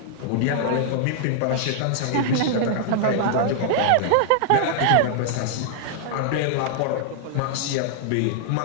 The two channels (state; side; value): different; both; correlation -0.01